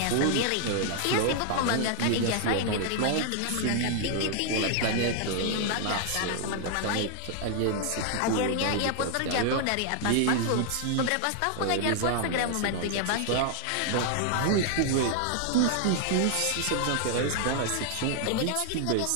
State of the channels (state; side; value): different; both; correlation 0.00